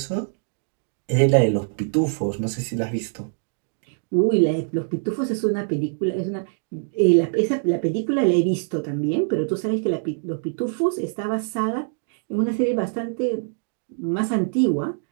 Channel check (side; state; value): left; silent; digital silence